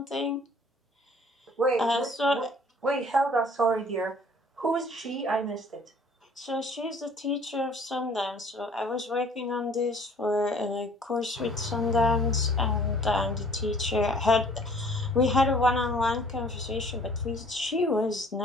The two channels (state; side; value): normal; both; correlation 0.54